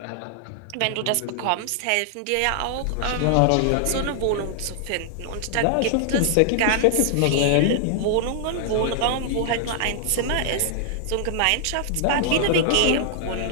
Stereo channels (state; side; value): different; both; correlation -0.01